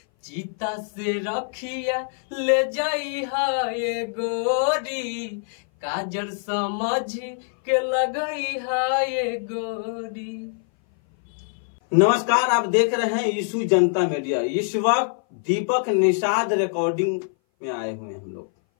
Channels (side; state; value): right; silent; 58 dB below the other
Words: चीता से रखिया ले जाई है गोरी काजर समझ के लगई है गोरी। नमस्कार, आप देख रहे हैं यीशु जनता मीडिया। इस वक्त दीपक निषाद रिकॉर्डिंग में आए हुए हैं हम लोग,